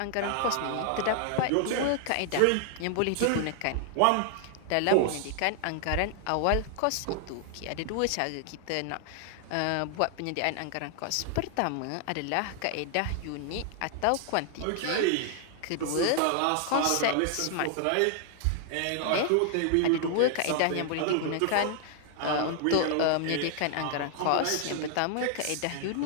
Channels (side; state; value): both; different; correlation 0.00